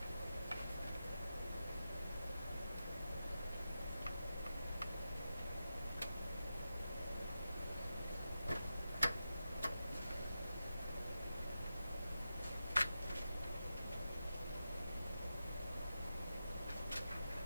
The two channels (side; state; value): both; inverted; correlation -0.91